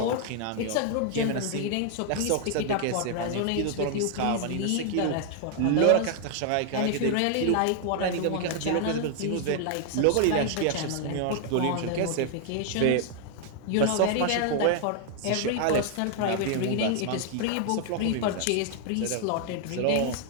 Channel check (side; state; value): both; different; correlation 0.00